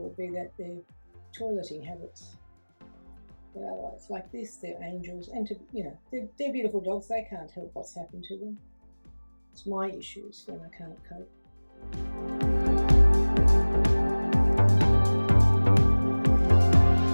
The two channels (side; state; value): both; inverted; correlation -1.00